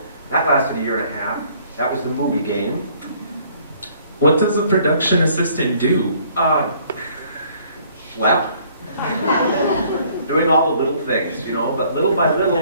That lasted a year and a half. That was the movie game. What does a production assistant do? Schlep. Doing all the little things, you know, but little by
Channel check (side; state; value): both; inverted; correlation -0.60